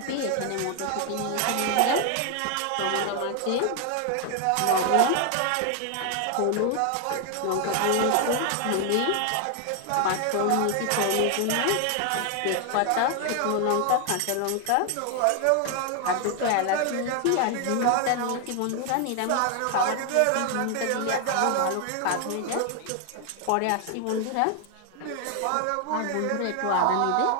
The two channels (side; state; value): both; different; correlation 0.00